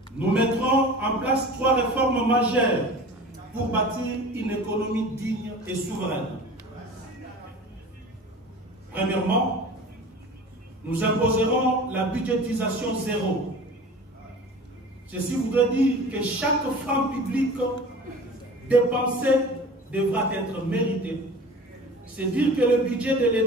Nous mettrons en place 3 réformes majeures pour bâtir une économie digne et souveraine. Premièrement, nous imposerons la budgétisation zéro. Ceci voudrait dire que chaque franc public dépensé devra être mérité. C'est dire que le budget de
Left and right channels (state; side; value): normal; both; correlation 0.39